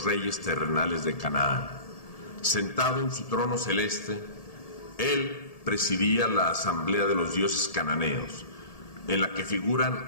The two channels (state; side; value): late; right; 1.7 ms